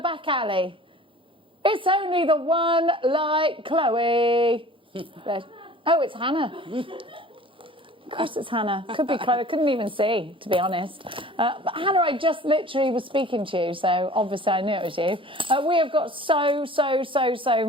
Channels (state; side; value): normal; both; correlation 0.45